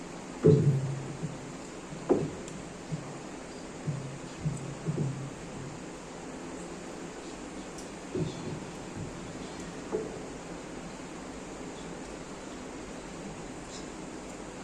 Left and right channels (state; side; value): identical; both; correlation 1.00